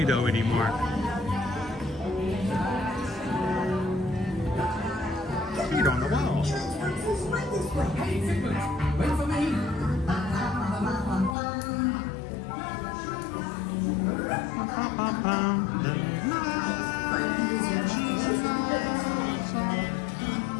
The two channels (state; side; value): drops out; right; at 11.4 s